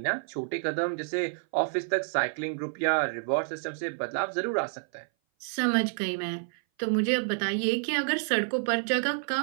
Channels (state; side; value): silent; left; 57 dB below the other